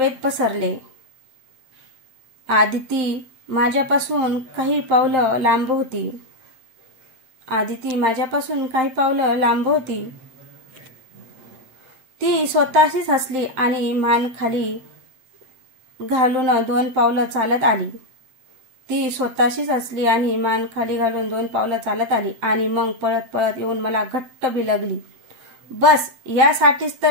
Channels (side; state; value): left; late; 7.7 ms